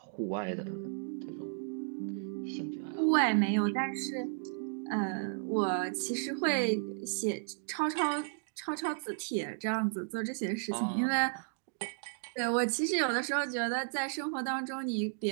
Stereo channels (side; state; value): left; silent; digital silence